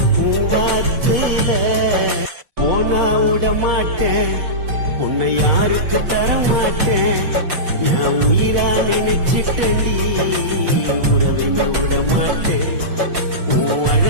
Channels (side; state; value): left; late; 5.7 ms